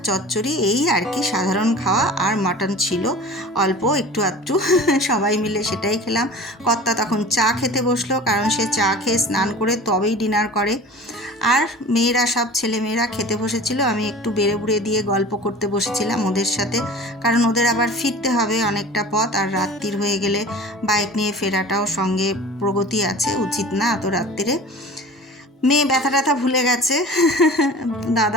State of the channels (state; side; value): normal; both; correlation 0.40